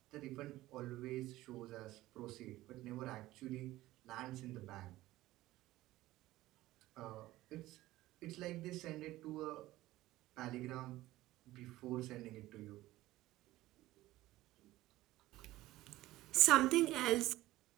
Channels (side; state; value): left; quieter; 16.7 dB